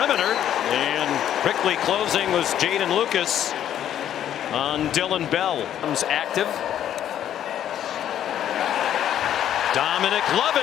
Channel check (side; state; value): right; quieter; 10.7 dB